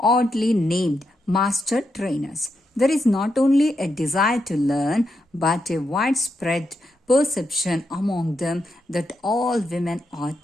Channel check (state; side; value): normal; both; correlation 0.84